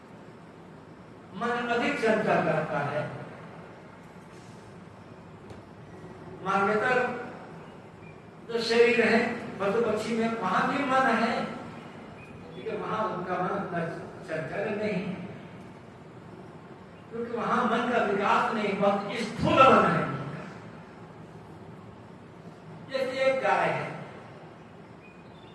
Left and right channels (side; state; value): both; identical; correlation 1.00